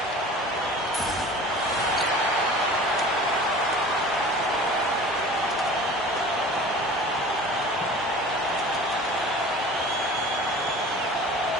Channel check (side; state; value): both; normal; correlation 0.41